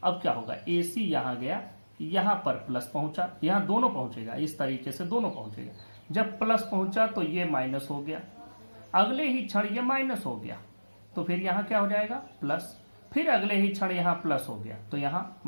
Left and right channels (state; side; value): inverted; both; correlation -1.00